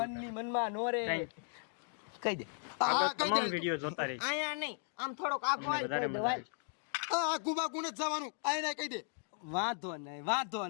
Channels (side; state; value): right; silent; 54 dB below the other